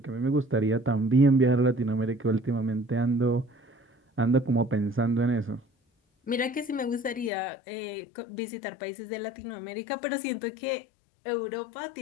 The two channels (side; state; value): right; drops out; at 7.3 s